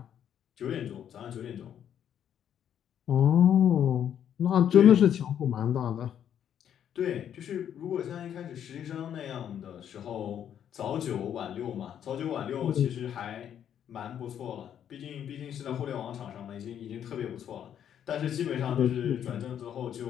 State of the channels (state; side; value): quieter; right; 9.5 dB